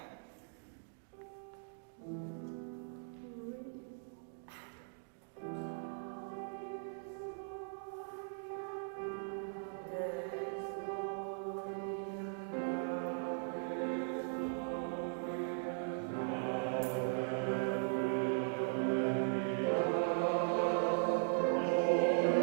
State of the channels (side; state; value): left; silent; digital silence